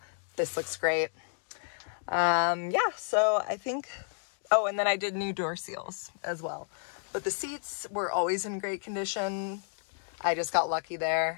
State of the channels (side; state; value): right; silent; 55 dB below the other